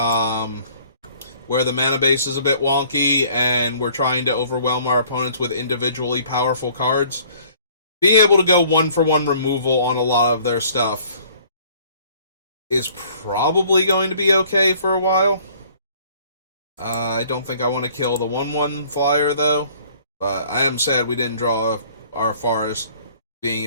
where the mana base is a bit wonky and we're trying to overwhelm our opponents with individually powerful cards, being able to go 1-for-1 removal on a lot of their stuff is probably going to be okay for a while. I don't think I want to kill the 1/1 flyer, though. But I am sad we didn't draw our forest, being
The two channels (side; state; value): both; inverted; correlation -0.56